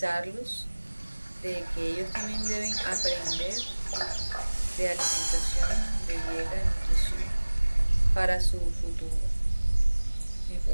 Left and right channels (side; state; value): both; inverted; correlation -1.00